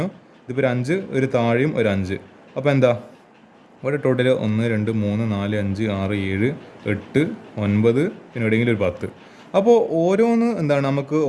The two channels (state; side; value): identical; both; correlation 1.00